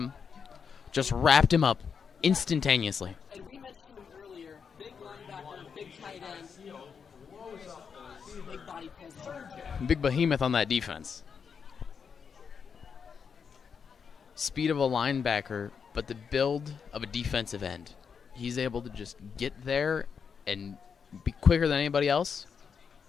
Just wrapped him up instantaneously. And we mentioned him earlier. Big linebacker, big tight end, big body presence. Big behemoth on that defense. Speed of a linebacker, but the build of a defensive end. He's able to just get there and be quicker than anybody else,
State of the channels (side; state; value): right; quieter; 6.4 dB